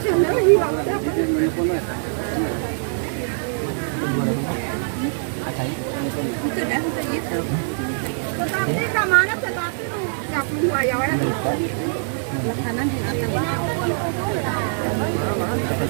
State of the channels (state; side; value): silent; left; 62 dB below the other